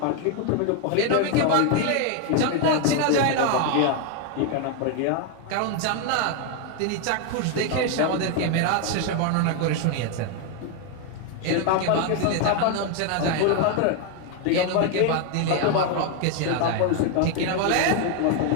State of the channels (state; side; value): different; both; correlation 0.01